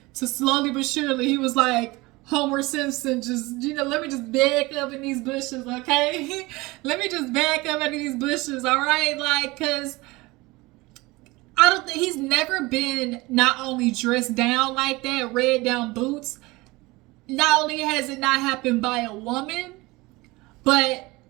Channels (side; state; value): left; quieter; 22.2 dB